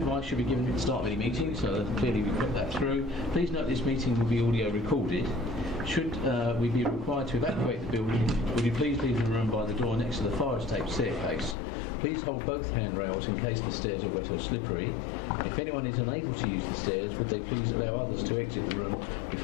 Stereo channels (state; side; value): drops out; right; at 11.6 s